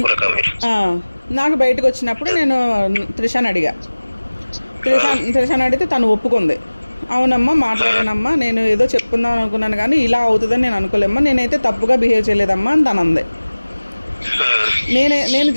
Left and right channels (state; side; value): inverted; both; correlation -1.00